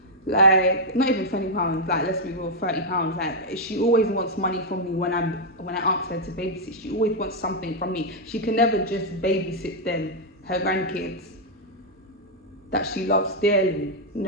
like not even £20, like let's be real, £30. Like, she always wants money from me when I ask her to babysit. She always wants something from me. She can never just babysit them, her grandkids that she loves dearly.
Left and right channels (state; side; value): normal; both; correlation -0.03